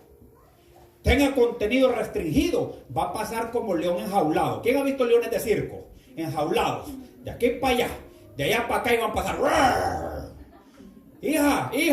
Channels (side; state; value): both; identical; correlation 1.00